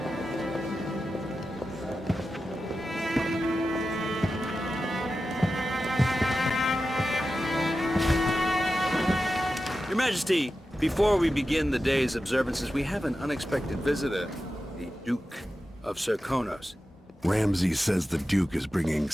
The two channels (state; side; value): normal; both; correlation 0.92